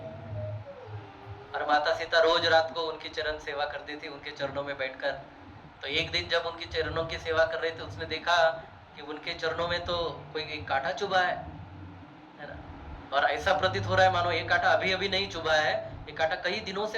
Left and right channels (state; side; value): identical; both; correlation 1.00